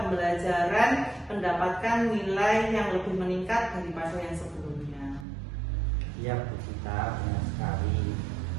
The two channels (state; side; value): drops out; left; at 5.2 s